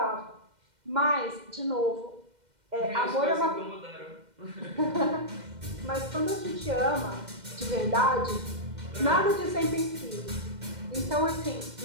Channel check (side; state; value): left; late; 2.1 ms